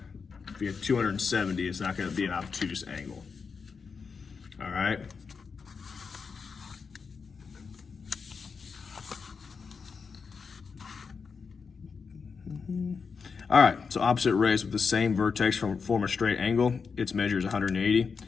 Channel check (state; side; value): quieter; right; 5.4 dB